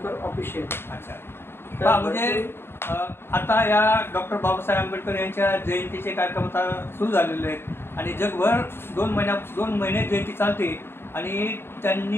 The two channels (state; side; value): late; right; 0.11 ms